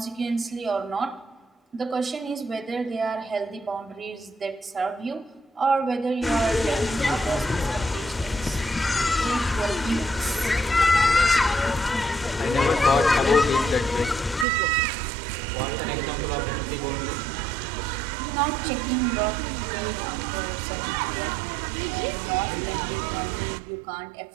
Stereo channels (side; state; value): left; drops out; at 14.5 s